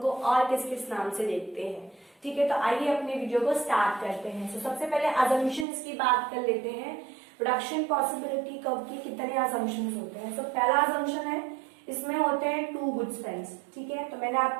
को और किस किस नाम से देखते हैं। ठीक है, तो आइए अपने वीडियो को स्टार्ट करते हैं। तो सबसे पहले अजम्पशंस की बात कर लेते हैं। प्रोडक्शन पॉसिबिलिटी कर्व के कितने अजम्पशंस होते हैं? तो पहला अजम्पशन है, इसमें होते हैं टू गुड्स फ्रेंड्स। ठीक है, तो मैंने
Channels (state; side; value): drops out; left; at 5.7 s